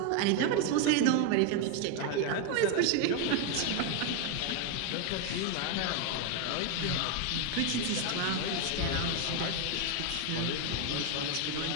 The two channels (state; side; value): different; both; correlation 0.01